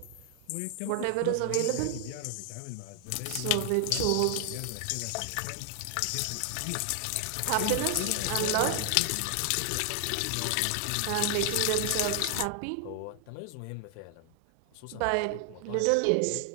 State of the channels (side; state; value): both; different; correlation 0.00